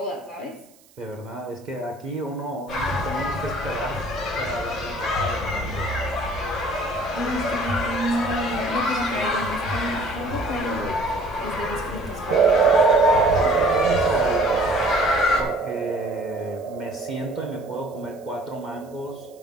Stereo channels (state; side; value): noise; right; hiss, 29 dB below the sound